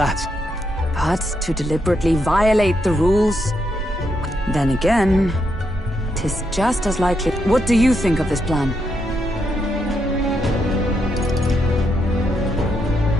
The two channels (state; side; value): normal; both; correlation 0.80